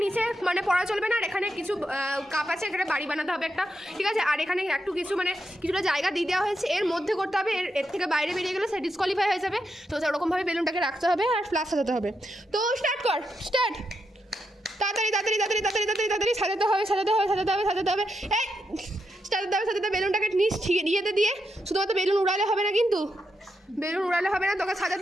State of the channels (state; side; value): normal; both; correlation 0.83